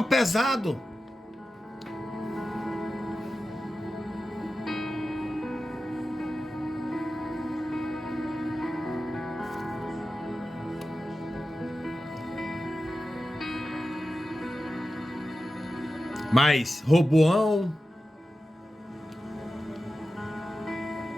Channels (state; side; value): normal; both; correlation 0.93